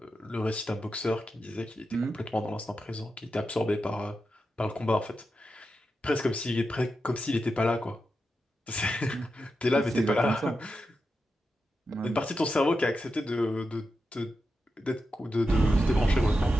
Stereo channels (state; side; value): normal; both; correlation 0.89